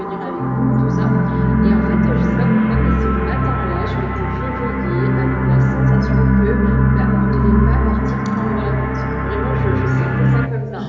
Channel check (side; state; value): both; identical; correlation 1.00